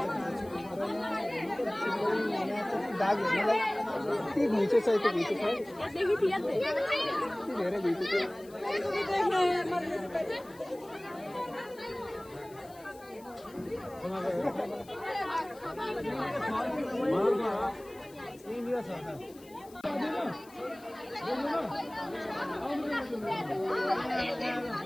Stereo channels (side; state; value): left; noise; hiss, 24 dB below the sound